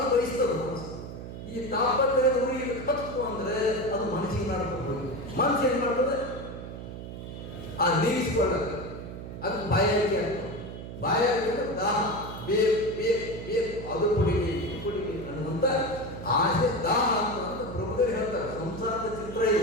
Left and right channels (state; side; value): noise; right; hum, 10 dB below the sound